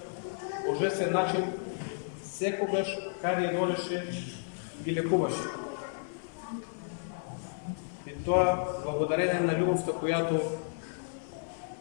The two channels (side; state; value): right; silent; 56 dB below the other